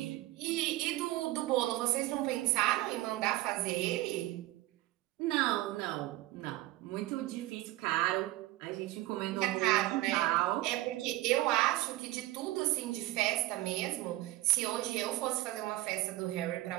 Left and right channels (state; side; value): quieter; left; 17.5 dB